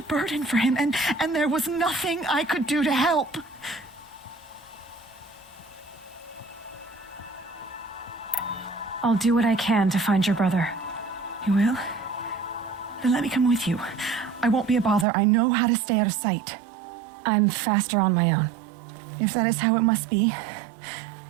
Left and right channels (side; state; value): left; drops out; at 15.1 s